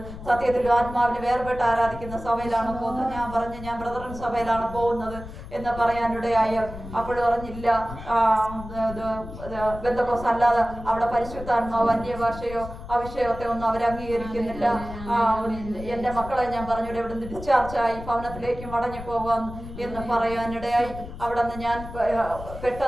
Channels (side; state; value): left; noise; rumble, 12 dB below the sound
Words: സത്യത്തിൽ ആത്മാവിനെ വേർപെട്ട് ആരാധിക്കുന്ന സഭയിലാണ് പോകുന്നത്. ഞാൻ പറഞ്ഞു ഞാൻ ബ്രദറൻ സഭയിലാണ് പോകുന്നത് എന്ന് പറയാനിടയായി. അപ്പോൾ പറഞ്ഞില്ല, ബന്ധക്കോസ് അല്ലാതെ അവിടെ പരിശുദ്ധാത്മാവ് അന്യഭാഷയോ അവിഷയത്തെ ഒന്നും അവർ അംഗീകരിക്കുന്നില്ല. എൻ്റെ മക്കളെ ഞാൻ പറഞ്ഞു ഇവിടെ നിന്ന് ഡിസ്ചാർജായി ഭവനത്തിലേക്ക് മടങ്ങി പോകാം എന്ന് പറയാനിടയായി. അവിടെ നിന്ന് ഞാൻ